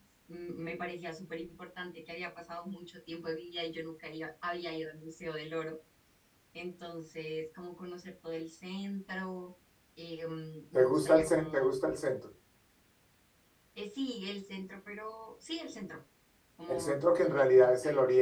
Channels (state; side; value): identical; both; correlation 1.00